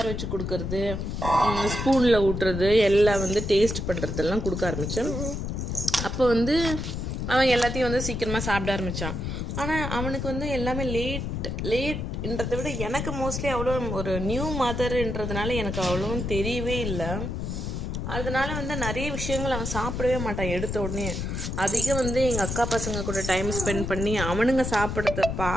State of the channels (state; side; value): noise; left; rumble, 3 dB below the sound